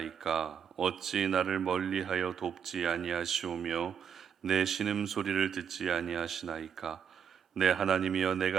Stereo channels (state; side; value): quieter; left; 7.6 dB